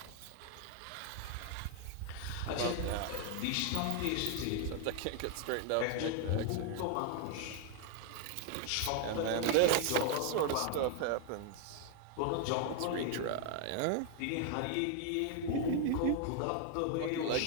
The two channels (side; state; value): both; different; correlation 0.00